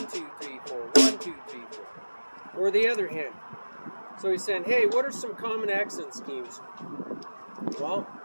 2, 3, 4. 1, 2, 3, 4. Or the other hand. So he's saying, hey, what are some common accent schemes? Well,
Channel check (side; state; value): both; inverted; correlation -1.00